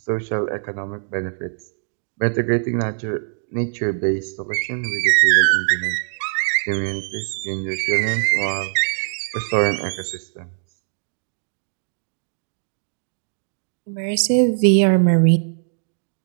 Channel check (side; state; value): left; silent; digital silence